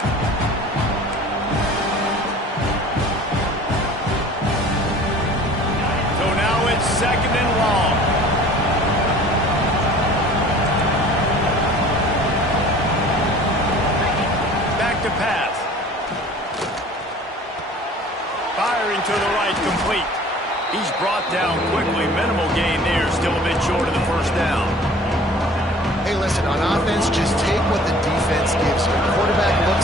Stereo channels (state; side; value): normal; both; correlation 0.47